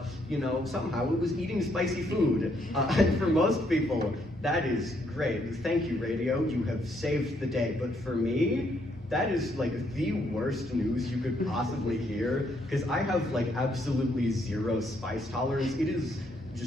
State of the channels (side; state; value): both; normal; correlation 0.72